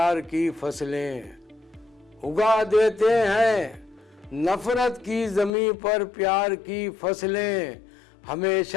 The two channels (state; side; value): drops out; right; at 5.5 s